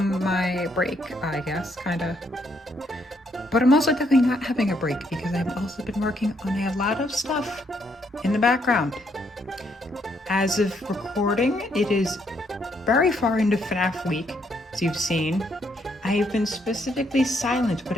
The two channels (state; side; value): normal; both; correlation 0.73